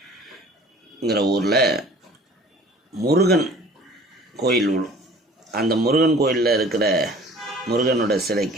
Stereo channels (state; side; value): normal; both; correlation 0.49